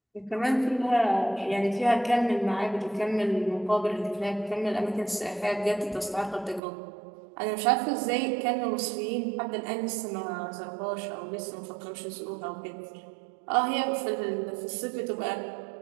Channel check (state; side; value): drops out; left; at 6.6 s